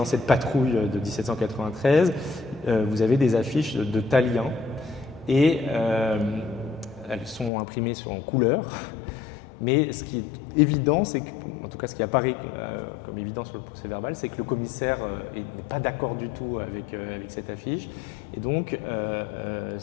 cette patrouille de 1793, vous avez des affiches de Tallien, et elles sont imprimées en couleur. Mais ce qui est évident, c'est que, en tout cas ce qui apparaît comme évident sur le procès-verbal, c'est que le commissaire n'est pas d'accord du tout avec cette affiche. Et donc,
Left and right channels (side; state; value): right; drops out; at 7.5 s